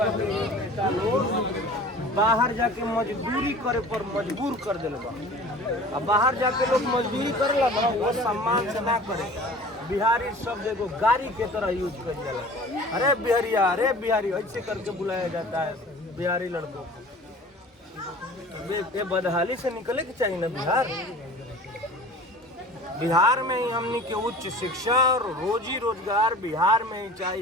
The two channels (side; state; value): both; normal; correlation 0.42